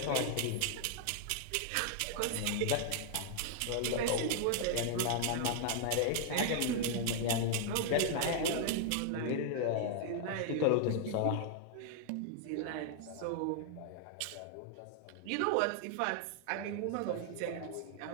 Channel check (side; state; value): both; different; correlation 0.00